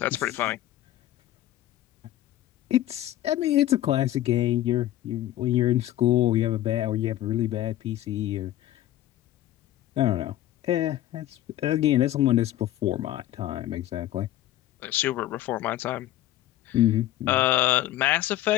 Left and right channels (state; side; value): quieter; right; 13.9 dB